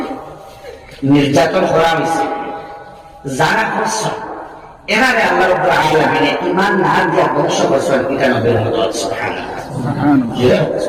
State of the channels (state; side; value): identical; both; correlation 1.00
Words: নির্যাতন করা হয়েছে, যারা করছে এরারে আল্লাহ রাব্বুল আলামিন ঈমান না দিয়া ধ্বংস করছেন, এটা নবীর মদত সুবহানাল্লাহ